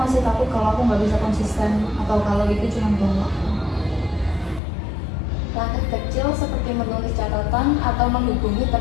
takut kalau aku nggak bisa konsisten, atau kalau itu cuma buang waktu. Langkah kecil seperti menulis catatan atau menghubungi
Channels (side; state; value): right; drops out; at 4.6 s